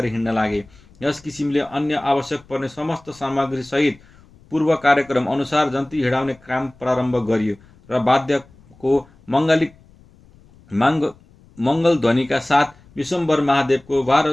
हिँड्न लागे। यस किसिमले अन्य आवश्यक पर्ने समस्त सामग्री सहित पूर्व कार्यक्रम अनुसार जन्ती हिँडाउने काम प्रारम्भ गरियो र वाद्यको मङ्गल ध्वनिका साथ विश्वम्भर महादेवको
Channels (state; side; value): noise; left; rumble, 27 dB below the sound